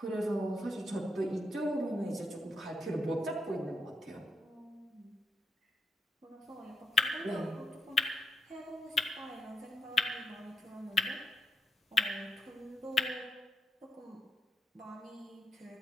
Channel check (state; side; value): normal; both; correlation 0.80